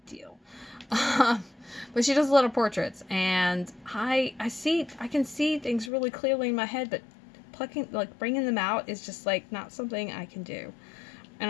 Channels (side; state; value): right; drops out; at 5.9 s